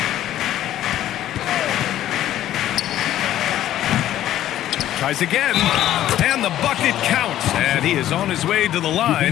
Tries again, and the bucket counts. And he is on his way to the line.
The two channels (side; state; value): right; quieter; 12.7 dB